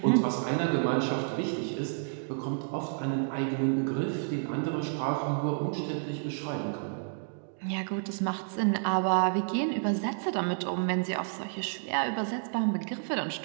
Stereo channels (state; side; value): silent; left; digital silence